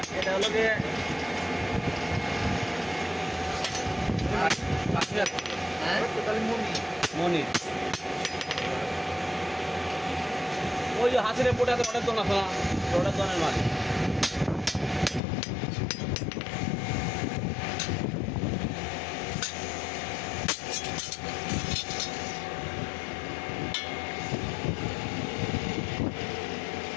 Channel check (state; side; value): drops out; right; at 15.2 s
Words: এটা হলো যে মনি ওই যে হাসিরে পোটাতে অনেক জন আছে না ওটা জনের মাছ